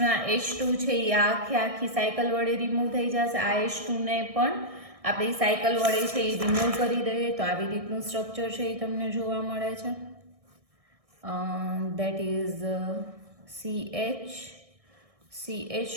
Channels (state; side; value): late; left; 1.6 ms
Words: ના H2 છે એ આખી સાયકલ વડે રિમૂવ થઈ જશે. આ H2 ને પણ આપણે સાયકલ વડે છે એ રિમૂવ કરી દઈએ તો આવી રીતનું સ્ટ્રક્ચર છે એ તમને જોવા મળે છે. That is